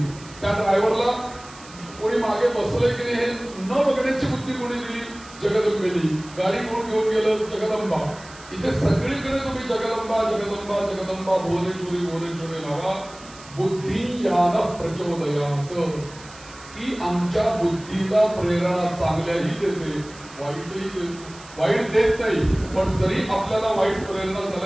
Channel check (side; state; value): right; noise; hiss, 20 dB below the sound